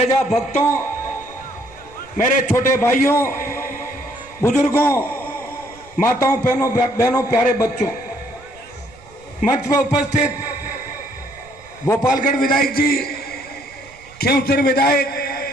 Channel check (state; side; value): noise; right; rumble, 24 dB below the sound